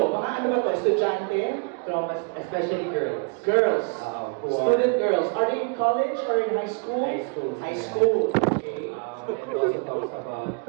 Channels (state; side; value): quieter; left; 36.3 dB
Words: mga ano ba to? Estudyante? Traumas, especially girls. Girls. Who are- Student girls. Are they in college or in high school? High school. High school. Okay. And it also talks about